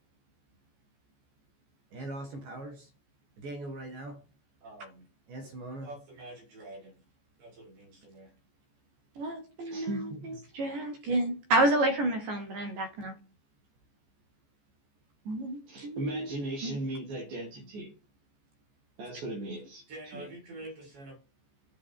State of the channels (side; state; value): left; late; 14 ms